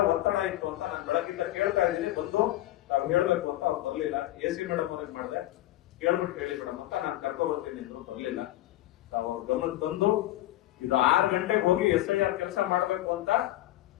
ಒತ್ತಡ ಇತ್ತು ಅಂತ ನಾನು ಬೆಳಗಿಂದ ಕೇಳ್ತಾ ಇದ್ದೀನಿ. ಬಂದು ನಾವು ಹೇಳ್ಬೇಕು ಅಂತ ಅವ್ರು ಬರ್ಲಿಲ್ಲ. AC ಮೇಡಮ್ ಅವ್ರಿಗೆ ಮಾಡಿದೆ, ಕೇಳ್ಬಿಟ್ಟು ಹೇಳಿ ಮೇಡಮ್ ಅಂತ ನಾನು ಕರ್ಕೊ ಬರ್ತೀನಿ ಅಂದ್ರು, ಬರ್ಲಿಲ್ಲ. ಅವ್ರ ಗಮನ ತಂದು ಇದು 6 ಗಂಟೆಗೆ ಹೋಗಿ SIR ಕೆಲಸ ಮಾಡ್ಬೇಕು ಅಂತ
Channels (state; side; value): quieter; right; 15.5 dB